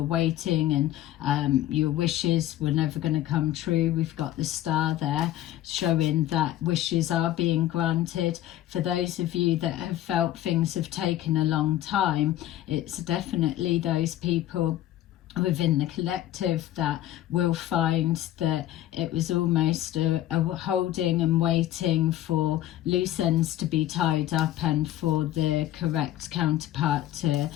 waiting and your wishes were never going to come true, we've got the star there showing that wishes are being granted. For those of you that have felt things have taken a long time, it's definitely those people within the collective that will find that it was almost a holding and waiting for loose ends to be tied up, and for the correct counterpart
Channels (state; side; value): quieter; right; 13.4 dB